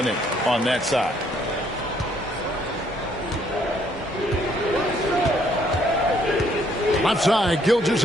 on that side. Left side,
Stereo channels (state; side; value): normal; both; correlation 0.67